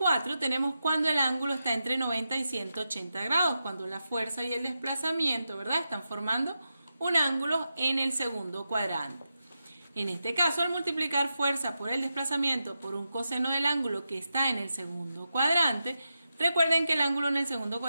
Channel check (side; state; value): both; inverted; correlation -0.88